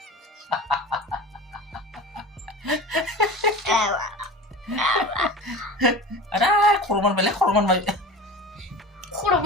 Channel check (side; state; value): both; normal; correlation 0.34